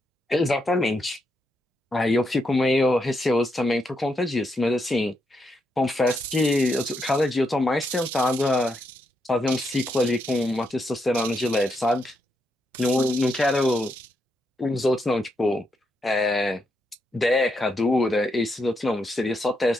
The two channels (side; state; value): both; normal; correlation 0.81